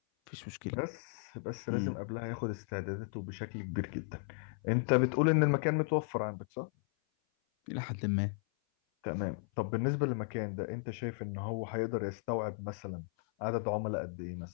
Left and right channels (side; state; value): right; silent; 54 dB below the other